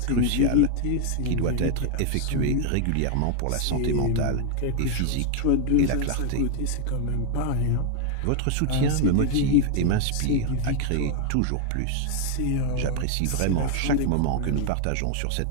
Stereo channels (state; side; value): different; both; correlation 0.00